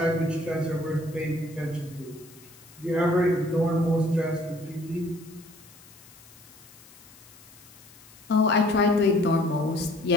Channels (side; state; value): left; noise; hiss, 23 dB below the sound